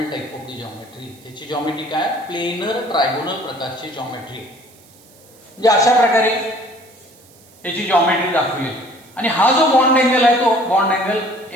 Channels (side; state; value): right; noise; hiss, 27 dB below the sound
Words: type of the geometry. त्याची जॉमेट्री काय? प्लेनर ट्रायगोनल प्रकारची जॉमेट्री. म्हणजे अशा प्रकारे त्याची जॉमेट्री दाखवली. आणि हा जो बॉन्ड अँगल आहे तो बॉन्ड अँगल